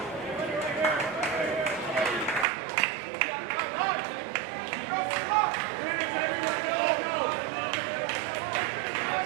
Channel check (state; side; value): drops out; left; at 2.5 s